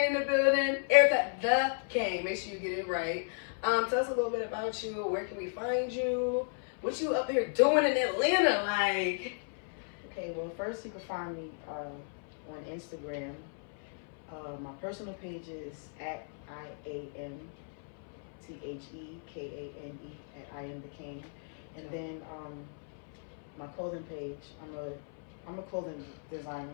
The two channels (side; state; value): right; silent; 55 dB below the other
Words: in the building. ERICA the Kane. Make sure you get it right. Tell us a little bit about you. Where can we find you? What you up here doing in Atlanta? Like. Okay. Well, first you can find me on Instagram. My personal page is at IAMTHEKANE at I am the King, and then my clothing page. I'm a clothing